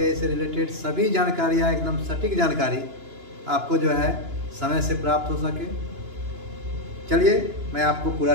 से रिलेटेड सभी जानकारियाँ, एकदम सटीक जानकारी आपको जो है समय से प्राप्त हो सके। चलिए मैं आपको पूरा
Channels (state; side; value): late; left; 2.9 ms